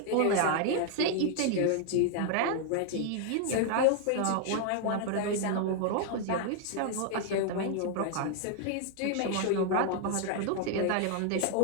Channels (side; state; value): both; different; correlation 0.00